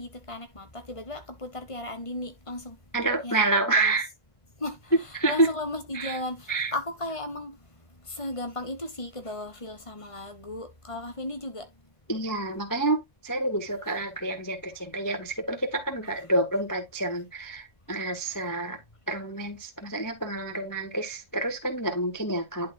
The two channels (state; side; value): late; right; 1.5 ms